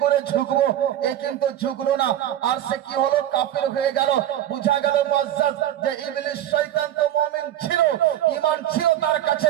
করে ঝুঁকবো? এ কিন্তু ঝুঁকলো না, আর সে কি হলো? কাফির হয়ে গেল। বুঝা গেল মুআজ্জাজ যে ইবলিস শয়তান তো মুমিন ছিল, ঈমান ছিল তার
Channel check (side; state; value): left; quieter; 11.9 dB